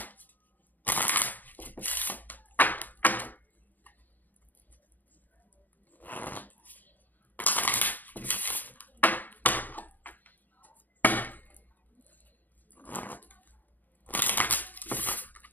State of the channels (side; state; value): right; late; 0.085 ms